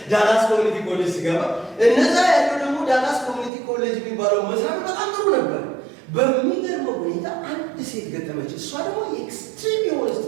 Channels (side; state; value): left; drops out; at 3.5 s